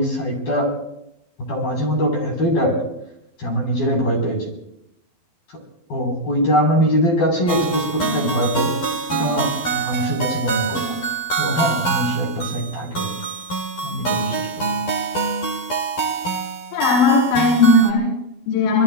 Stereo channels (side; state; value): right; late; 12 ms